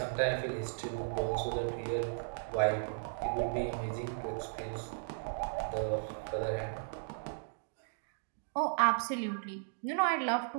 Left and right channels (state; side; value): silent; left; digital silence